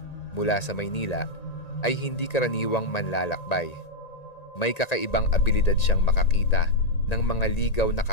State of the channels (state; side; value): late; right; 1.9 ms